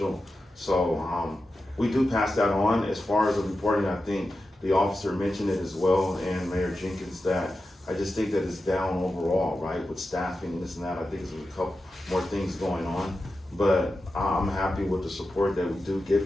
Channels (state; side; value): normal; both; correlation 0.91